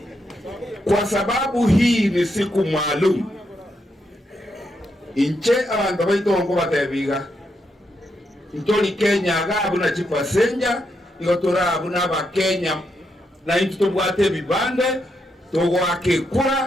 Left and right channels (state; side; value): normal; both; correlation 0.81